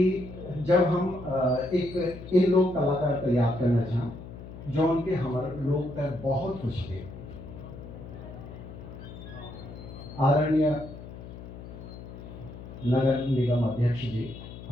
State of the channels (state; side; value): noise; left; hum, 13 dB below the sound